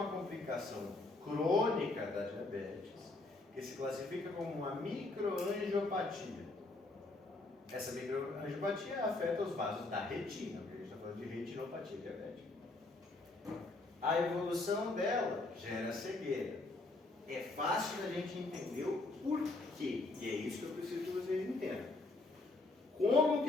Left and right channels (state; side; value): quieter; right; 3.1 dB